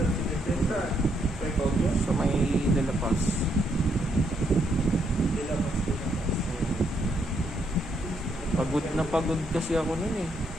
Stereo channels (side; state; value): both; normal; correlation 0.75